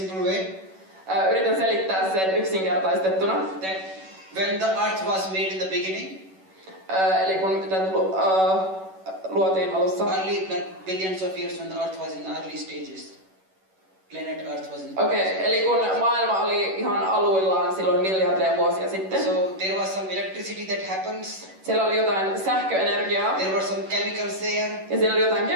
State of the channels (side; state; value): left; late; 11 ms